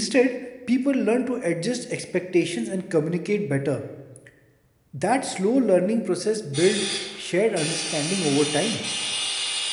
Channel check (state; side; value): identical; both; correlation 1.00